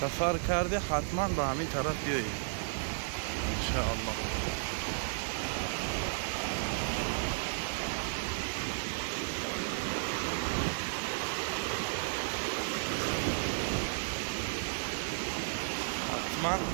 کرده حتما به همین طرف بیایید انشاءالله.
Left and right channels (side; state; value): left; silent; 55 dB below the other